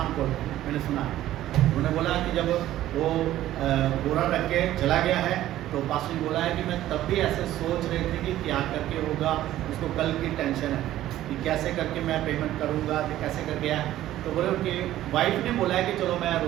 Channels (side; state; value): left; quieter; 13.8 dB